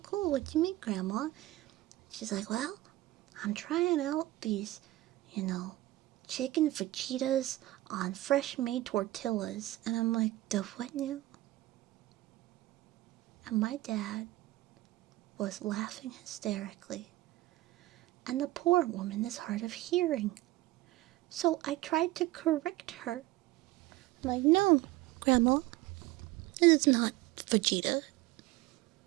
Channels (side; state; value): left; quieter; 17.3 dB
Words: cool, what'd you make, Grandma?" She's like, "Well, I'm trying out these, chicken fajitas on fresh made tortillas." And I'm like, "The what now?" And my dad was laughing hysterically, and the poor woman is hard of hearing. So I tried to correct her. I'm like, no, Grandma, it is not Vegeta.